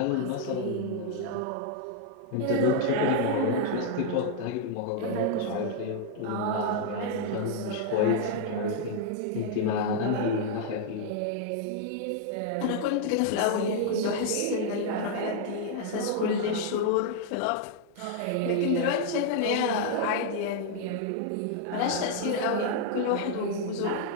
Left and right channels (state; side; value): different; both; correlation -0.01